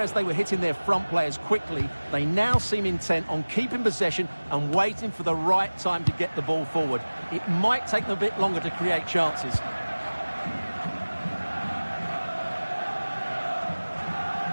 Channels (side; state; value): both; inverted; correlation -1.00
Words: they were hitting their front players quickly, they now seem intent on keeping possession and waiting for the right time to get the ball forward. It might take them a bit longer to create chances.